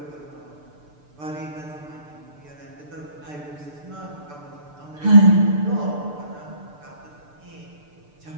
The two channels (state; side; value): late; left; 6.8 ms